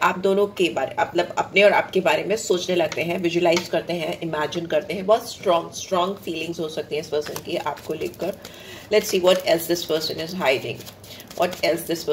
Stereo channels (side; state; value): both; identical; correlation 1.00